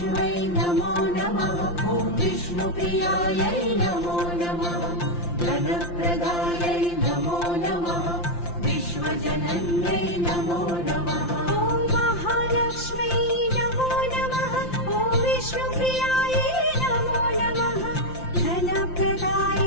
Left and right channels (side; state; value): right; late; 5.8 ms